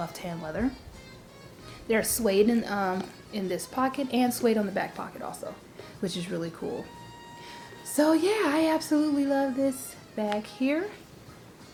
hand leather. There's suede in this pocket and suede on the back pocket also, which is really cool. So yeah, I absolutely love this bag here.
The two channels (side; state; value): both; identical; correlation 1.00